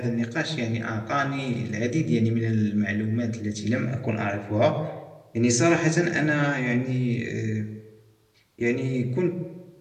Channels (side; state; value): both; identical; correlation 1.00